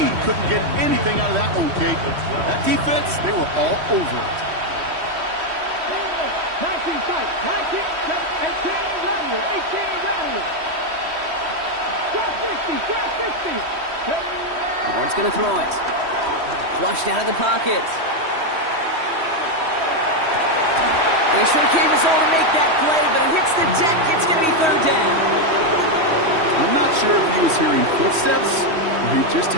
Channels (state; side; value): late; left; 3.1 ms